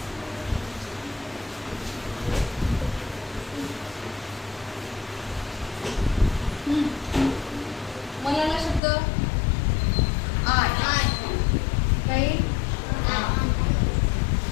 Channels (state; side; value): drops out; right; at 8.8 s